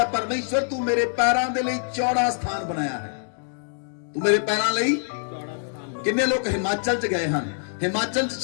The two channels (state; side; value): silent; right; digital silence